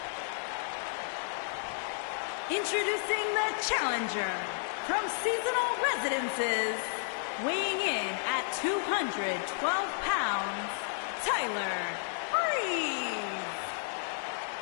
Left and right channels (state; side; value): silent; right; 56 dB below the other